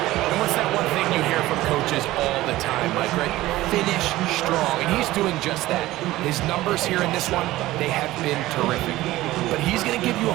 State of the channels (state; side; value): quieter; left; 16.8 dB